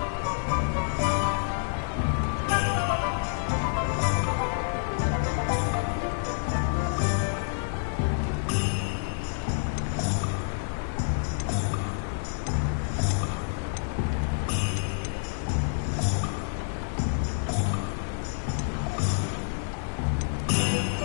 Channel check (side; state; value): right; silent; digital silence